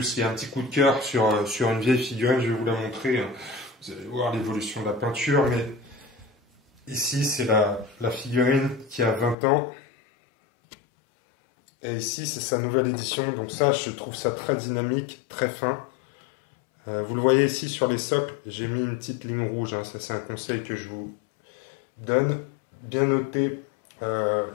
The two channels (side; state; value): right; drops out; at 9.3 s